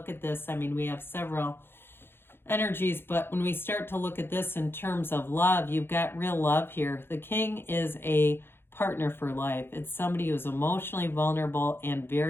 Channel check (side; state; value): right; late; 0.11 ms